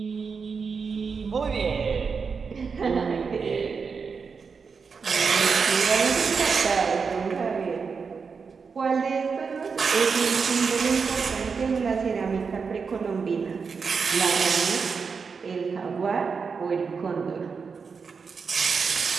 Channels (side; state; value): left; quieter; 5.4 dB